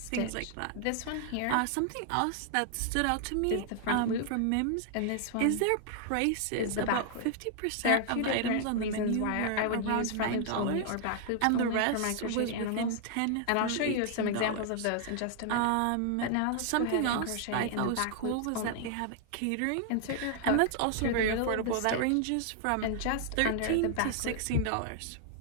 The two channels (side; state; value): both; different; correlation 0.00